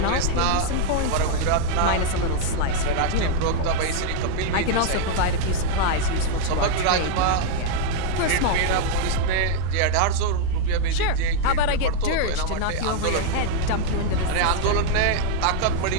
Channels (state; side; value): different; both; correlation 0.00